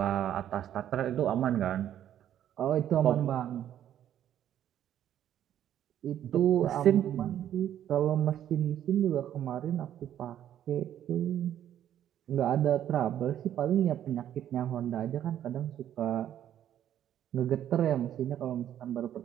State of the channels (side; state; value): left; quieter; 10.9 dB